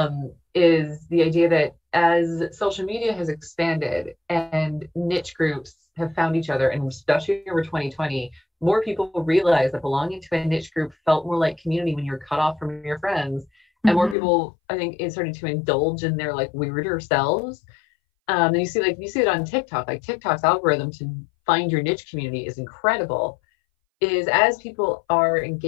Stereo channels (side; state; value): right; drops out; at 14.2 s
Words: Is the idea that as social media has expanded and niche groups have found each other, and especially over 2020, more people realize that belonging to a niche group felt more like community when you're cut off from your friends. And more people, I think, is starting to indulge in their like weirder selves. And you see it on TikTok. Like TikTok's algorithm to find your niche community is incredible. Is as people are